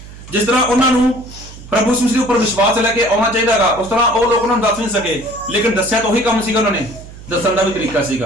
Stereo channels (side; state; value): right; noise; hum, 17 dB below the sound